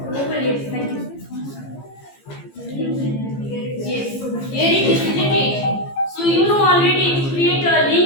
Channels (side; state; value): right; late; 15 ms